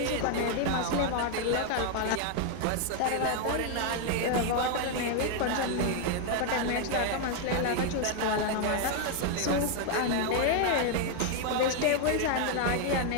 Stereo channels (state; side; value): different; both; correlation 0.00